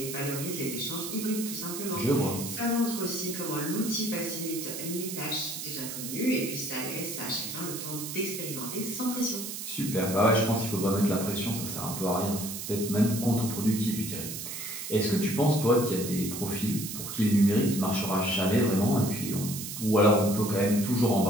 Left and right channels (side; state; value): right; noise; hiss, 7 dB below the sound